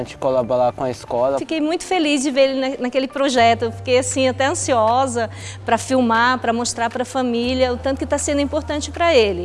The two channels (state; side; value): identical; both; correlation 1.00